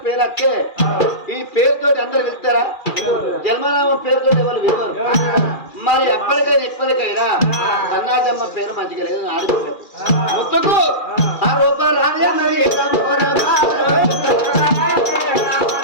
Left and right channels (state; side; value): late; right; 2.4 ms